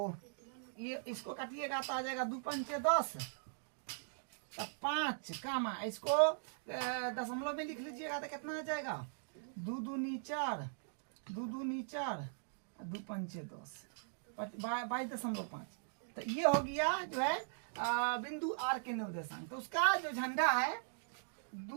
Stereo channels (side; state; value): left; silent; digital silence